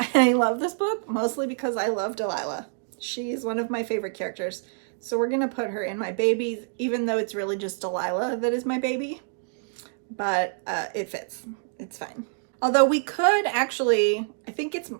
love this book mostly because I love Delilah. She's one of my favorite characters. So we're going to put her in my babies, even though it's really just Delilah that is my baby. But it fits. It's fine. Although we could actually, I think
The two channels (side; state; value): left; silent; digital silence